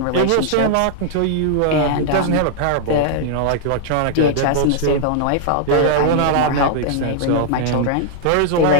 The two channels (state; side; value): different; both; correlation -0.01